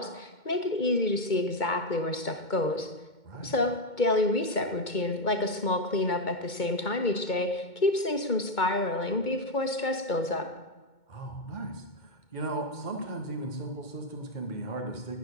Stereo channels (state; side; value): late; right; 2.2 ms